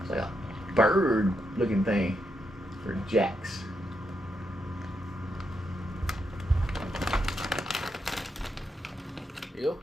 It's like a bird looking thing for Jax. Here you go.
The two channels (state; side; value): normal; both; correlation 0.82